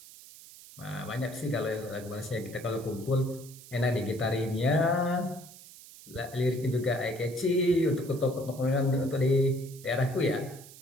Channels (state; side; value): noise; right; hiss, 18 dB below the sound